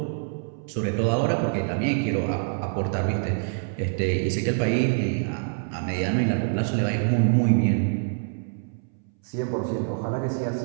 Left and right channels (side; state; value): left; silent; 61 dB below the other